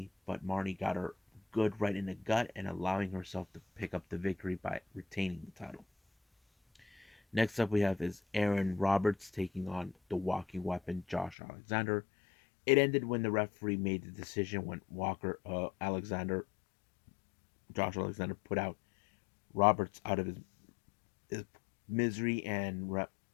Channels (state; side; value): drops out; right; at 11.4 s